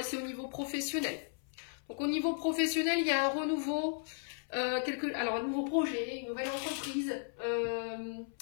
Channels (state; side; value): silent; right; 54 dB below the other